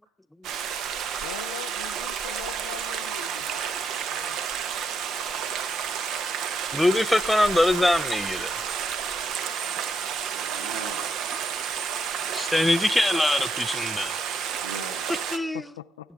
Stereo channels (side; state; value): both; normal; correlation 0.78